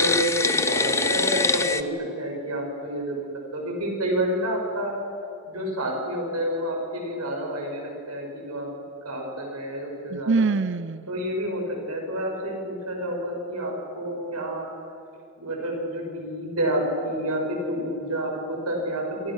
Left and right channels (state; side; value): normal; both; correlation -0.11